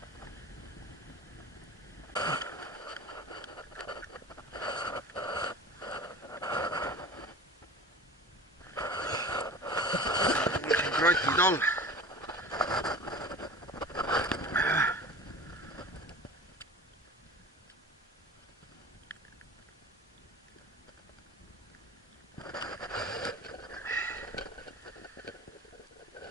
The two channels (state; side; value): normal; both; correlation 0.37